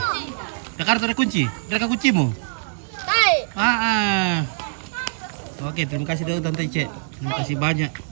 Jakarta ada kunci? Ada kuncimu? Oke, terima kasih dulu Tante Cek. Terima kasih banyak.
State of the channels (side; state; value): left; silent; digital silence